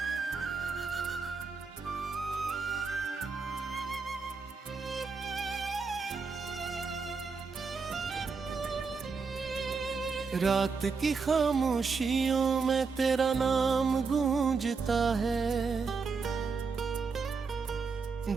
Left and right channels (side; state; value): left; quieter; 4.9 dB